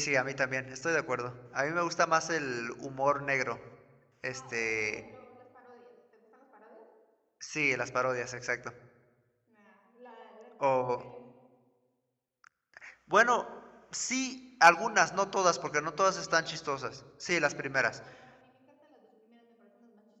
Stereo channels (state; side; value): identical; both; correlation 1.00